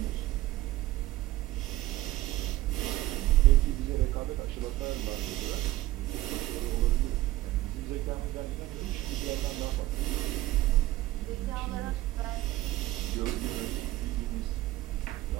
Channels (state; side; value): quieter; left; 16.5 dB